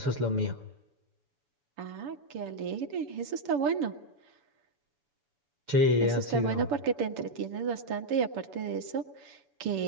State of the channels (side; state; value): left; late; 7.1 ms